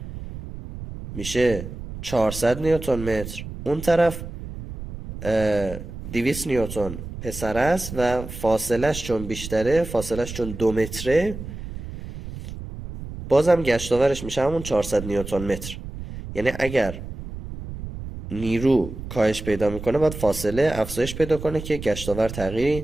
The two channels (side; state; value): right; noise; rumble, 10 dB below the sound